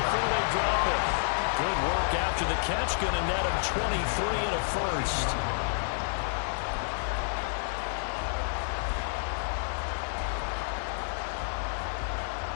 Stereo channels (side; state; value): right; silent; digital silence